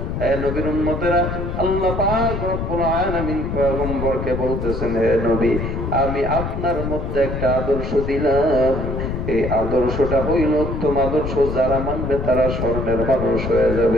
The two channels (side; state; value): left; noise; rumble, 4 dB below the sound